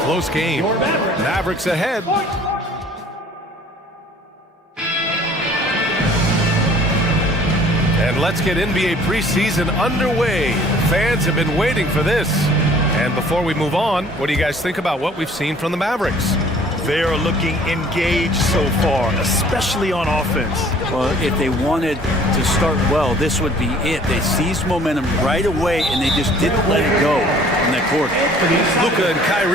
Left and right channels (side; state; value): both; normal; correlation 0.53